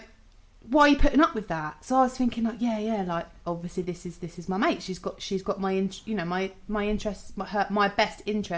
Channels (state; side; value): identical; both; correlation 1.00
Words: Why are you putting up with that? So I was thinking, like, yeah, like, obviously this is my mate. She's got my interests, my best